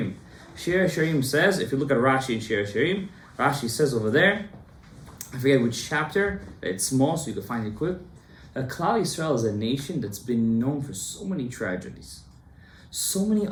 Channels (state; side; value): identical; both; correlation 1.00